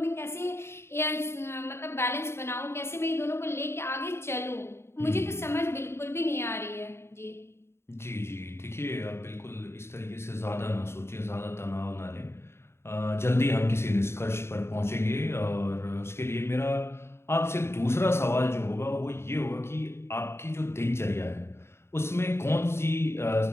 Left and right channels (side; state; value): right; late; 0.12 ms